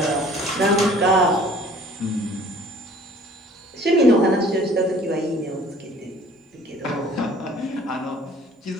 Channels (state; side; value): normal; both; correlation 0.52